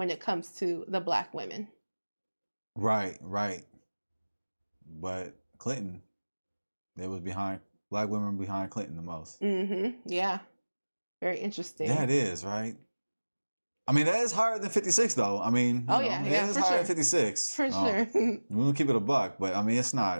it comes to the black women. Right. But Clinton, black women behind Clinton the most. Yeah. Very interesting. Yeah, it is, right? I mean, that is higher than 56, though. I mean, it is higher than 56. For sure. We'll keep it a buck, but I mean, it's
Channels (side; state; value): both; inverted; correlation -1.00